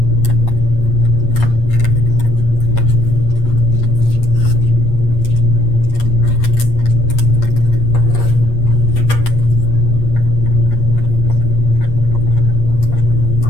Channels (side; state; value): right; late; 8.5 ms